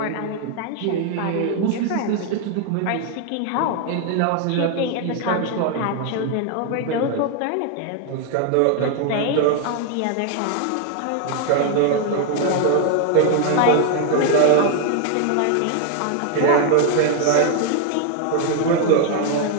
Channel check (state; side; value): different; both; correlation 0.00